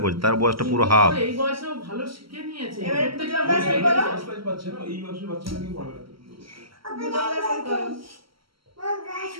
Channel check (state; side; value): late; left; 0.74 ms